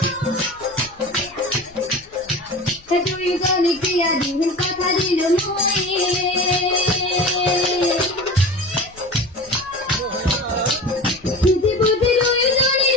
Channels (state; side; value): noise; left; rumble, 25 dB below the sound